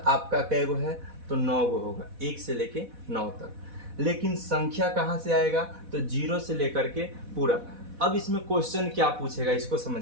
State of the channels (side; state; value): left; late; 4.1 ms